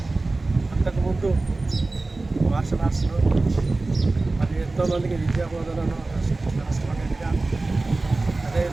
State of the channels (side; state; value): left; quieter; 3.3 dB